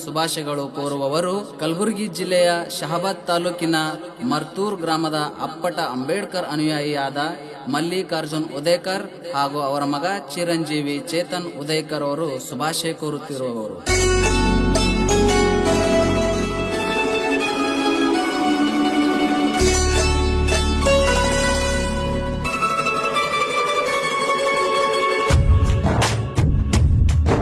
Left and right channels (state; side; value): identical; both; correlation 1.00